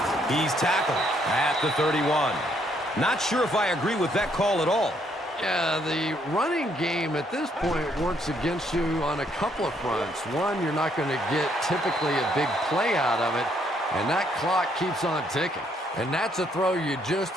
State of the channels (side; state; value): both; normal; correlation 0.70